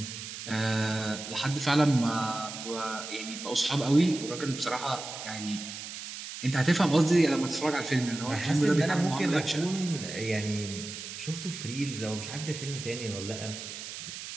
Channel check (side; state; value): right; noise; hiss, 9 dB below the sound